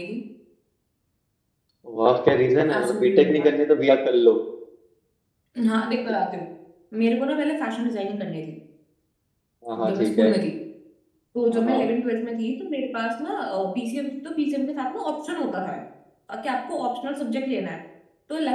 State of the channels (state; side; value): identical; both; correlation 1.00